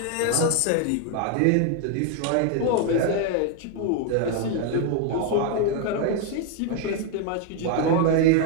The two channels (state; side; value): different; both; correlation 0.01